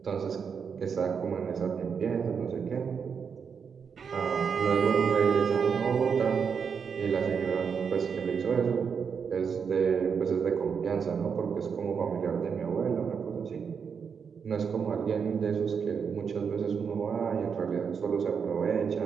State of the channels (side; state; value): left; quieter; 6.4 dB